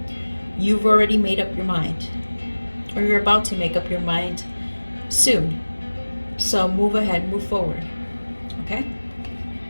You've already made up your mind, or you're about to make up your mind soon. So move ahead, move forward. Okay?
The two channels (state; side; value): inverted; both; correlation -1.00